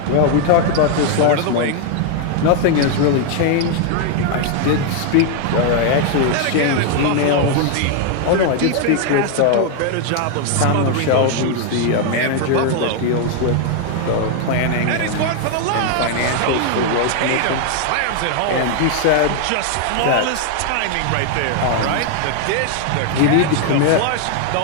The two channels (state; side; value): different; both; correlation 0.00